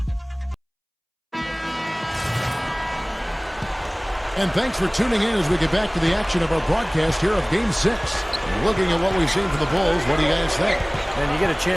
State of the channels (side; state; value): both; identical; correlation 1.00